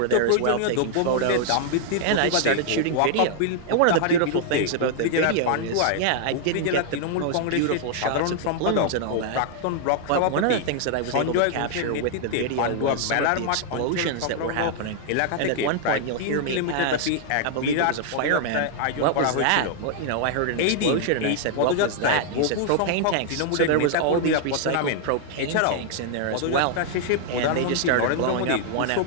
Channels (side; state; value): both; different; correlation -0.01